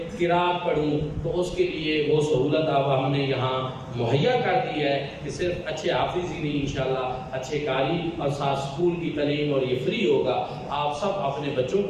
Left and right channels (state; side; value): identical; both; correlation 1.00